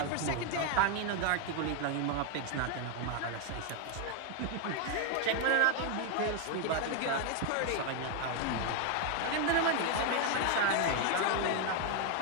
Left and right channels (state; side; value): different; both; correlation 0.01